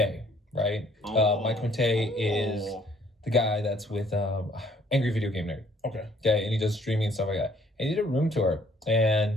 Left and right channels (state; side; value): normal; both; correlation 0.61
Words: right? Mike Matei is the guy that's with Angry Video Game Nerd. Okay, and he does streaming and stuff like that. And he did a room tour,